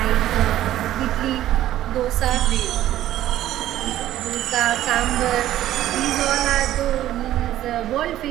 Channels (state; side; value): quieter; left; 13.3 dB